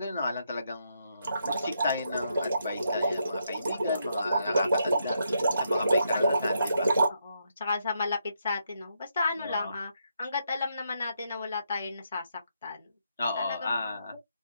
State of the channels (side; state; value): both; inverted; correlation -0.78